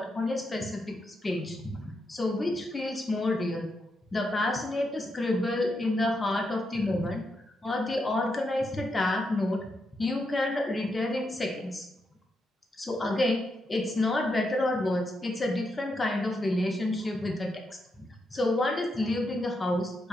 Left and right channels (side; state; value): both; normal; correlation 0.83